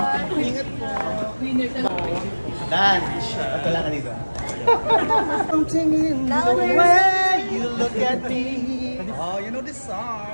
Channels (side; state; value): both; inverted; correlation -1.00